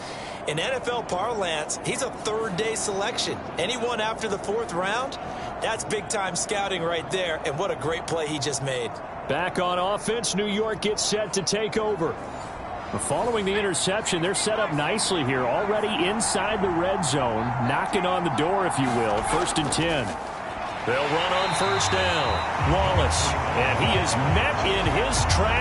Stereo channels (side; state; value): both; identical; correlation 1.00